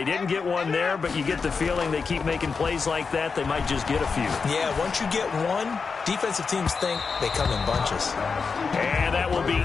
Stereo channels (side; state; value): right; quieter; 5.1 dB